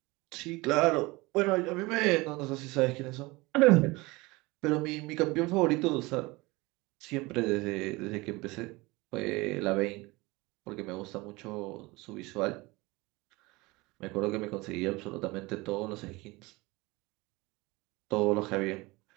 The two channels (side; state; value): left; quieter; 22.9 dB